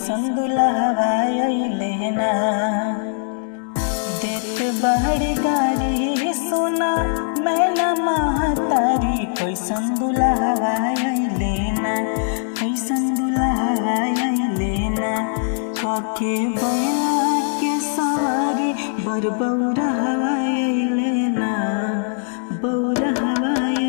दुल्हवा अइले ना। देत बाड़ी गारी सोना मैं न महतारी कैसन दुल्हवा अइले ना, कैसन दुल्हवा अइले ना। काके बैला के सवारी बर बौरहवा अइले ना, बौरहवा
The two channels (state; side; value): silent; right; digital silence